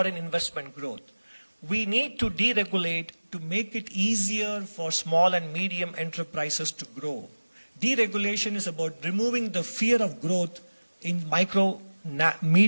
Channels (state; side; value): inverted; both; correlation -1.00